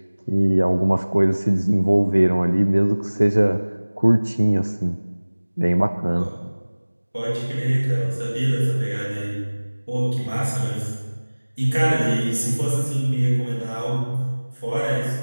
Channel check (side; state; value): both; inverted; correlation -1.00